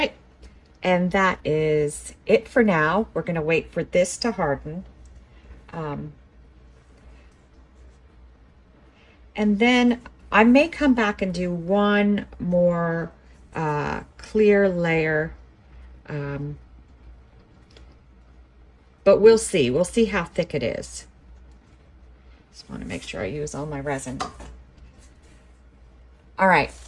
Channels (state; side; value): identical; both; correlation 1.00